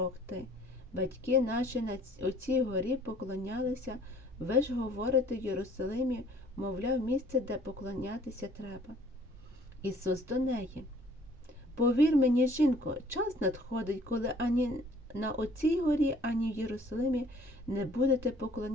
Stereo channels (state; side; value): normal; both; correlation 0.56